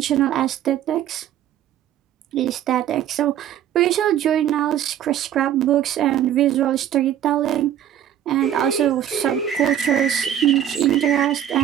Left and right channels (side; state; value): left; quieter; 10.7 dB